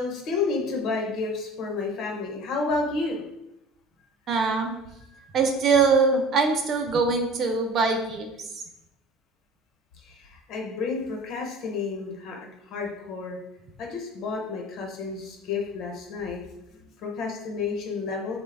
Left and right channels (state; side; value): normal; both; correlation 0.41